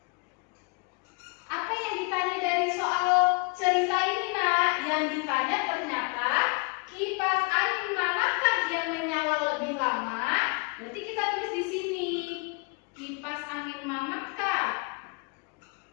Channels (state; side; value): quieter; right; 31.3 dB